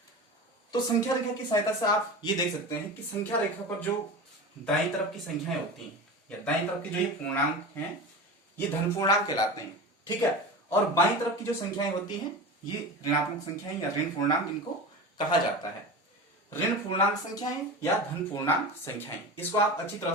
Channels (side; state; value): both; normal; correlation 0.29